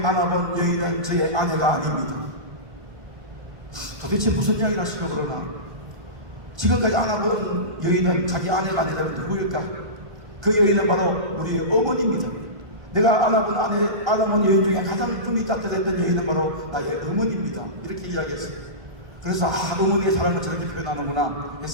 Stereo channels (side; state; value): left; late; 1.3 ms